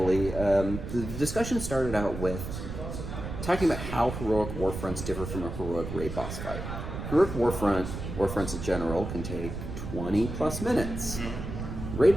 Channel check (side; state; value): right; noise; rumble, 7 dB below the sound